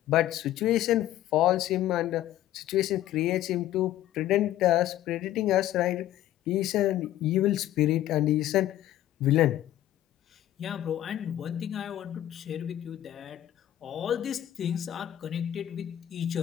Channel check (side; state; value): right; quieter; 13.1 dB